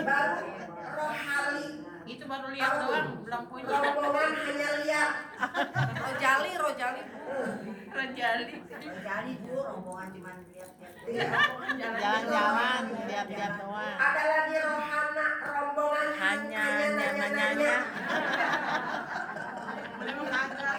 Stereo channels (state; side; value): identical; both; correlation 1.00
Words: rohali. Itu baru lihat doang, belum punya. Rombongan hanya lihat. Rojali. Rejali. Jadi Bu rombongan cuma lihat-lihat. Jalan-jalan, lihat-lihat doang. Ada lagi rohana, rombongan Hanya nanya-nanya.